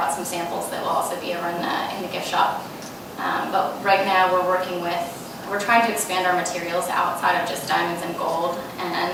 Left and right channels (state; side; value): identical; both; correlation 1.00